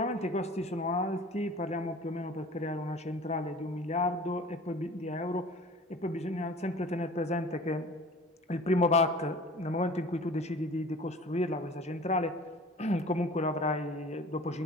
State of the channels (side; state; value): both; normal; correlation 0.43